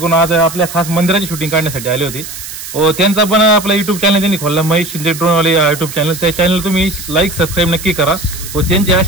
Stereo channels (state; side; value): noise; right; hiss, 11 dB below the sound